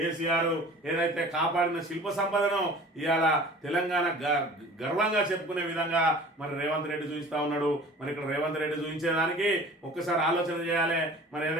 ఏదైతే కాపాడిన శిల్ప సంపదను ఇవాళ తెలంగాణ గర్వంగా చెప్పుకునే విధంగా మరి రేవంత్ రెడ్డి చూపిస్తా ఉన్నాడు. మరి ఇక్కడ రేవంత్ రెడ్డి చూపించేదానికి ఒక్కసారి ఆలోచన చేయాలి. మరి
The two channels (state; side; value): normal; both; correlation 0.44